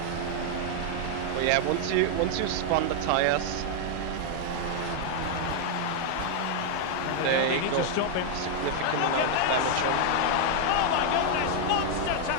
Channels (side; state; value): both; different; correlation 0.00